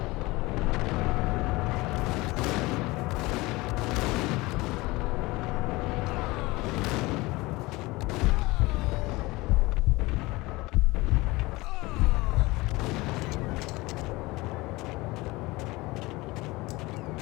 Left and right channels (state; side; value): quieter; right; 21.7 dB